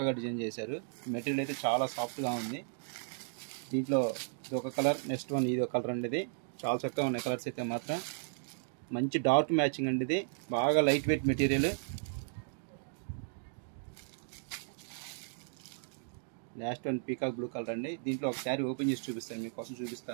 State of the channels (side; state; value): left; silent; digital silence